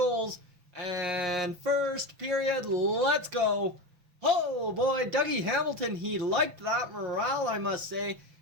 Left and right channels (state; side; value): late; left; 6.0 ms